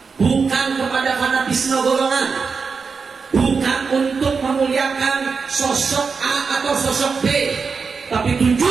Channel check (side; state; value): left; quieter; 5.2 dB